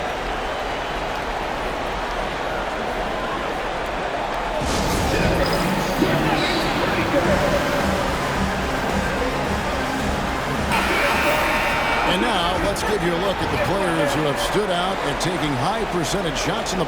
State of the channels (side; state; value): both; identical; correlation 1.00